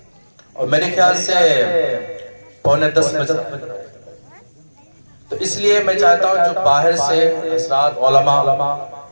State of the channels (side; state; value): both; inverted; correlation -1.00